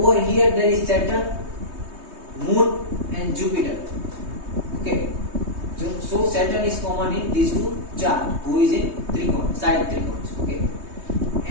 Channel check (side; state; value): left; late; 3.2 ms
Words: here there is Saturn, Moon and Jupiter. Okay, so Saturn is common in these two charts, who is in trigon, side trigons. Okay,